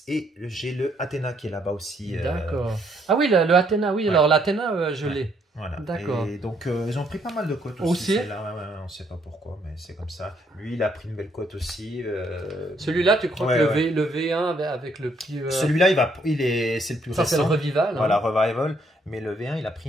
et j'ai le Athéna qui est là-bas aussi. D'accord. Ah oui, le Athéna, oui. Ouais. Alors, l'Athéna, je Ouais. l'ai. Voilà. D'accord. Et donc, ils ont pris pas mal de cotes aussi. Aussi celle-là. Ouais, on sait pas pourquoi, mais c'est comme ça. Lui, il a pris une belle cote aussi. Celui-là, tu crois Ouais, que ouais. le V1 avec le petit. Celui-là, c'est le plus Ça, c'est le récent. Revival. Voilà, hein. Revival. Mais le V1, il a pris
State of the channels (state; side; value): normal; both; correlation 0.70